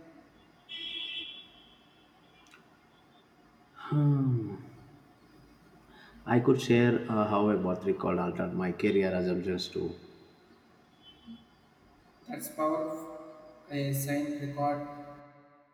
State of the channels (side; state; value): both; identical; correlation 1.00